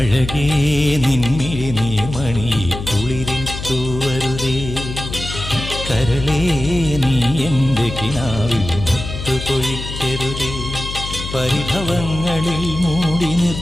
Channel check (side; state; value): left; noise; hum, 8 dB below the sound